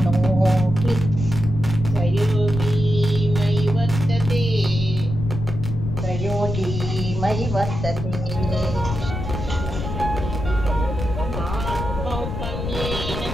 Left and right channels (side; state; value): left; noise; rumble, 5 dB below the sound